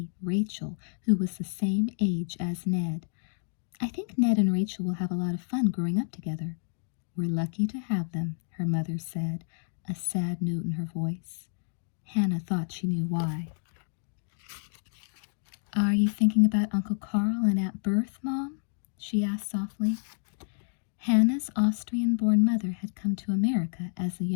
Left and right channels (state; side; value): silent; right; digital silence